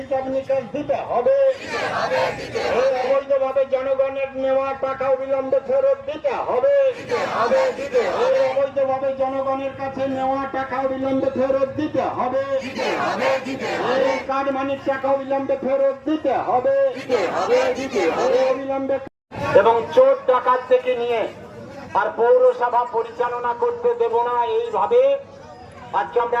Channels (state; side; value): identical; both; correlation 1.00